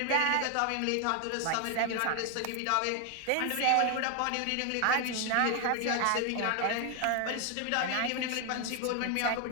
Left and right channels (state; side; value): different; both; correlation 0.00